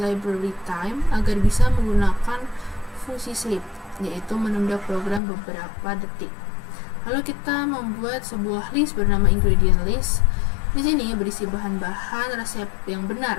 time agar bisa menggunakan fungsi sleep, yaitu menunda program beberapa detik. Lalu kita membuat sebuah list bernama ingredient list. Di sini berisi bahan-bahan resep yang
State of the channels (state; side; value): drops out; right; at 5.2 s